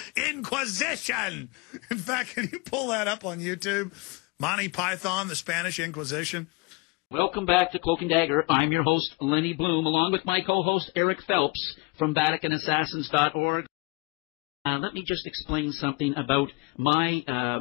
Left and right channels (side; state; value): right; quieter; 28.2 dB